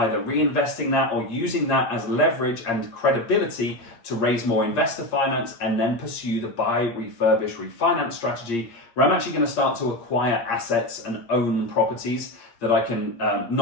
reinvesting that or using that as leverage and credibility to raise more investor finance and then pursue the buy, refurbish, refinance strategy, where I'm actually going to start to acquire assets and own properties that I can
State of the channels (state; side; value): late; right; 8.6 ms